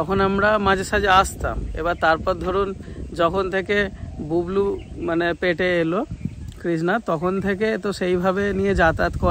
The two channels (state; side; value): identical; both; correlation 1.00